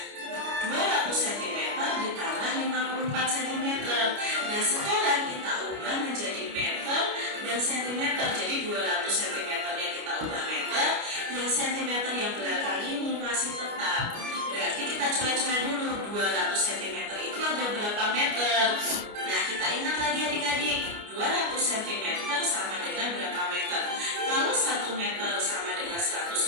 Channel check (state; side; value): late; left; 29 ms